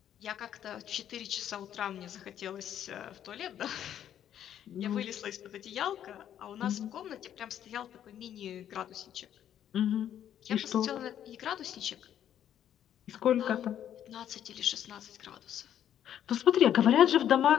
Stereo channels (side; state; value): right; quieter; 10.3 dB